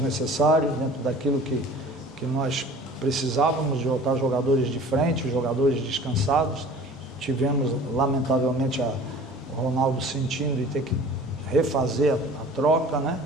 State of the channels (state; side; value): normal; both; correlation 0.45